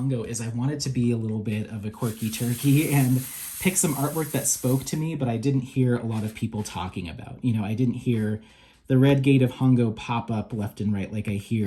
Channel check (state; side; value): identical; both; correlation 1.00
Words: is I wanted to be a little bit of a quirky turkey and pick some artwork that spoke to me, but I didn't hear a lot of people talking about. You know, I didn't hear the Red Gate of Hongo pop up left and right like I